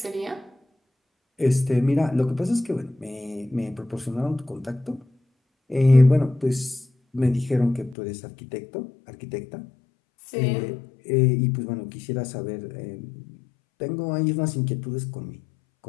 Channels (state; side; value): drops out; right; at 8.0 s